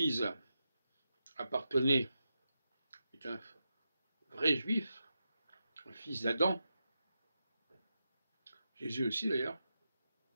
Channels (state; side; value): inverted; both; correlation -0.88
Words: appartenait, est un vrai juif, un fils d'Adam. Jésus aussi d'ailleurs.